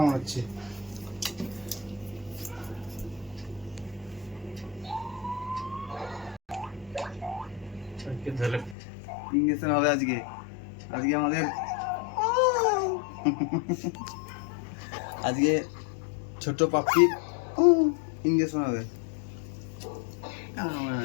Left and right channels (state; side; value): drops out; right; at 8.8 s